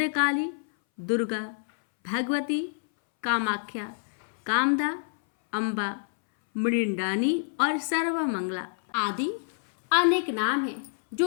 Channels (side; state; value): right; silent; 60 dB below the other